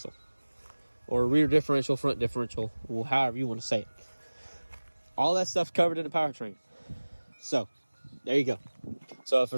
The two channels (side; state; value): both; inverted; correlation -1.00